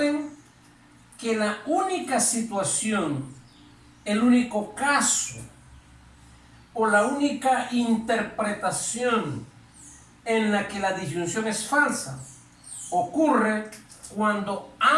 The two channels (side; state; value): both; identical; correlation 1.00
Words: que la única situación, el único caso o la única interpretación en la que la disyunción es falsa ocurre cuando